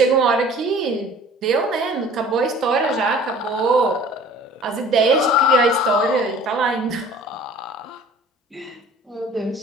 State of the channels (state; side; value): normal; both; correlation 0.47